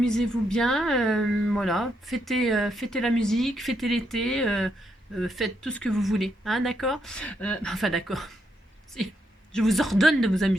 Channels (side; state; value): both; normal; correlation 0.78